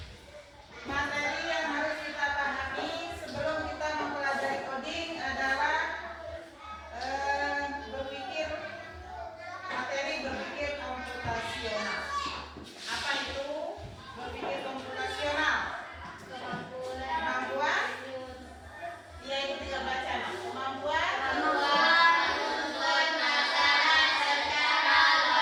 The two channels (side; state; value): both; identical; correlation 1.00